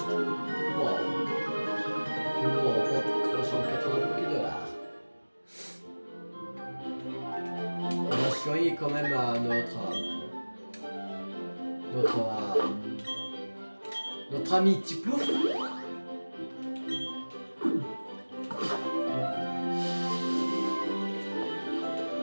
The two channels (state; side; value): inverted; both; correlation -1.00